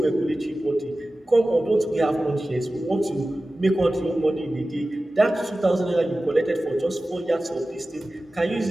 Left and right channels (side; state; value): both; normal; correlation 0.96